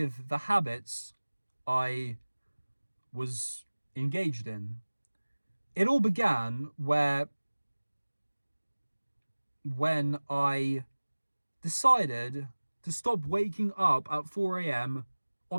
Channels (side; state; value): both; inverted; correlation -1.00